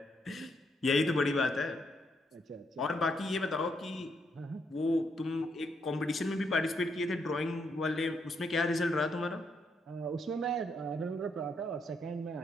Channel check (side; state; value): both; normal; correlation 0.76